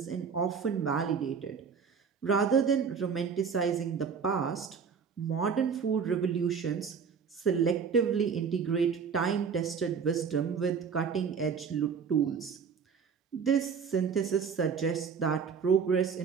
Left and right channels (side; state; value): left; quieter; 6.2 dB